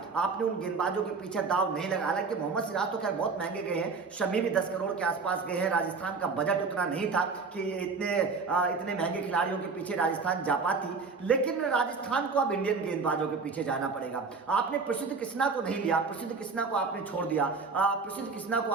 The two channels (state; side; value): quieter; left; 4.6 dB